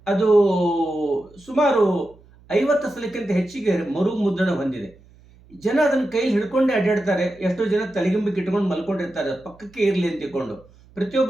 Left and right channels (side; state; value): right; noise; hum, 27 dB below the sound